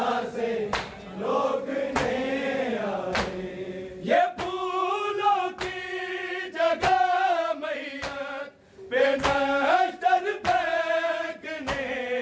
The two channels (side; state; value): both; identical; correlation 1.00